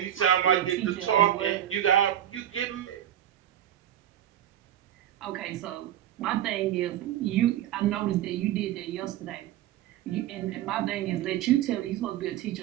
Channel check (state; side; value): quieter; left; 11.5 dB